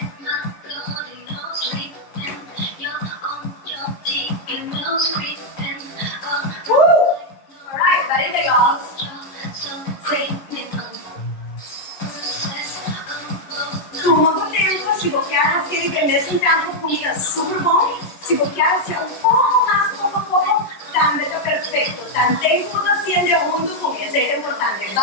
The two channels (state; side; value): late; right; 11 ms